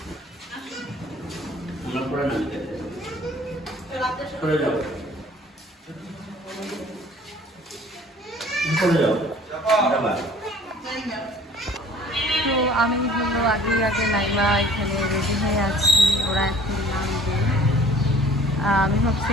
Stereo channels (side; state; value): both; normal; correlation 0.51